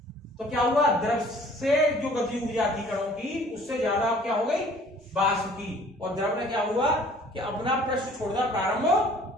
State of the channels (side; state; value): both; normal; correlation 0.54